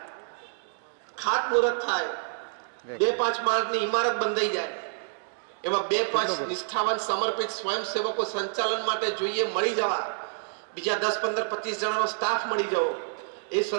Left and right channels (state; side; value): silent; left; digital silence